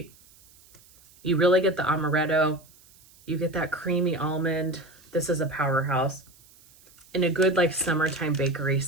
You really get the amaretto. You get that creamy almond. This is a powerhouse. In a good like summertime bakery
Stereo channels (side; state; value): right; noise; hiss, 27 dB below the sound